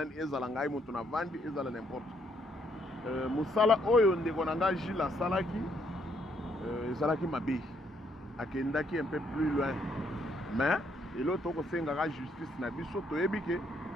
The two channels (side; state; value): both; normal; correlation 0.71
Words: ezala ngai muntu na vandi ezala n'importe musala oyo ndeko na nga Gilles asalaki ezalaki mabe akendaki un peu plus loin mais eloko tokosengaka justice na biso toyebi ke